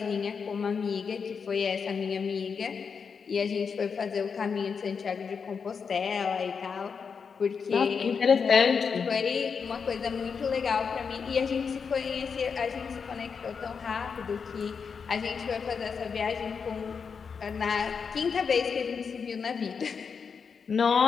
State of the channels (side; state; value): right; quieter; 5.9 dB